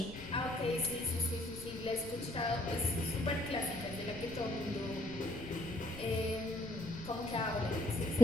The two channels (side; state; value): left; noise; rumble, 16 dB below the sound